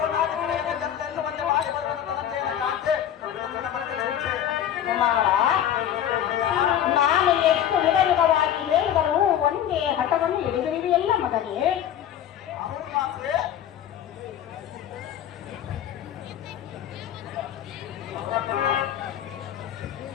ಮಾಡಿ ಕುಮಾರ ನಾನು ಎಷ್ಟು ವಿಧವಿಧವಾಗಿ ಹೇಳಿದರೂ ಒಂದೇ ಹಠವನ್ನು ಹಿಡಿದಿರುವೆಯಲ್ಲ ಮಗನೇ. ಅವರು ಮಾತ್ರ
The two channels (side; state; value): right; quieter; 10.4 dB